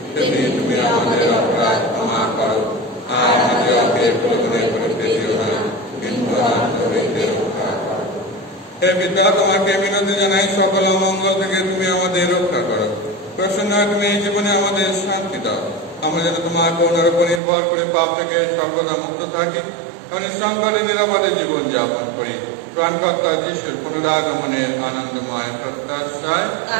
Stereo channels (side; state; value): left; drops out; at 17.4 s